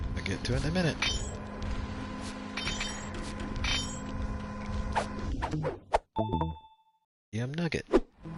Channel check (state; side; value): identical; both; correlation 1.00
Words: I'll get to it in a minute. Yum nugget.